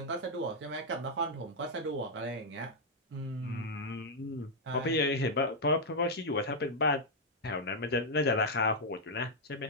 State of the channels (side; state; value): both; normal; correlation -0.04